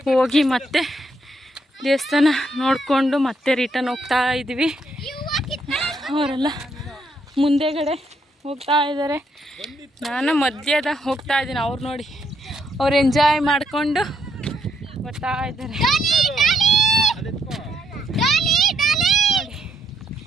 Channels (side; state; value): both; normal; correlation 0.74